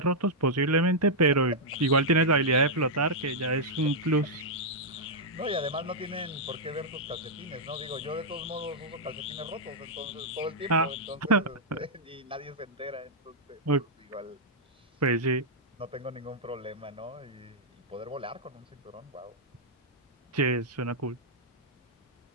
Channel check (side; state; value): both; normal; correlation -0.06